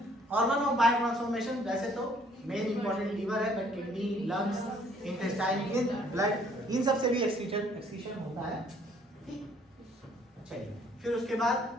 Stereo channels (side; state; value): both; normal; correlation 0.62